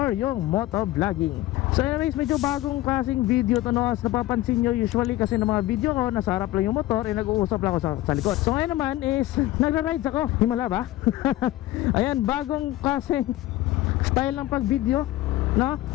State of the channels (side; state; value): right; quieter; 16.2 dB